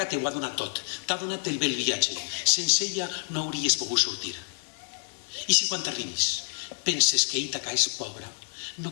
t'ho ha donat tot, t'ha donat el bel viatge. Sense ella no hauries pogut sortir. I si quan t'arribis penses que Ítaca és pobra, no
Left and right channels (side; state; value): right; silent; digital silence